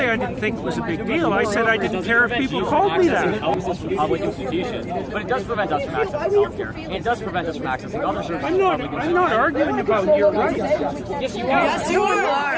I didn't think it was a big deal. I said I didn't care if people called me that. Public institutions, but it does prevent us from accessing healthcare. And it does prevent us from accessing other services. I'm not arguing about your rights. Yes, you are. Yes, you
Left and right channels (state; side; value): identical; both; correlation 1.00